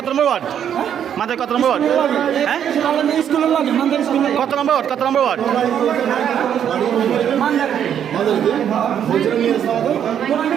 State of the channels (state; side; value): quieter; left; 9.2 dB